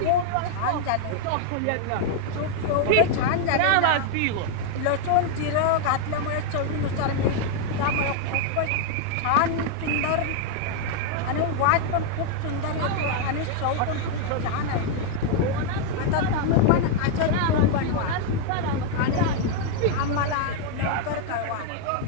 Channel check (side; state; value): both; different; correlation 0.00